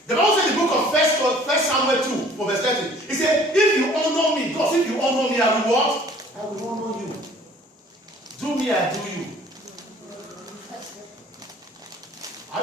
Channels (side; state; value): both; normal; correlation 0.53